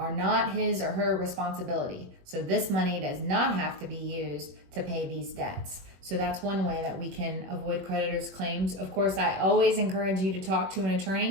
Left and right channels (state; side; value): late; left; 21 ms